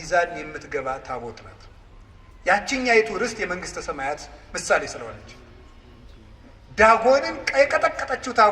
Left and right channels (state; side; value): identical; both; correlation 1.00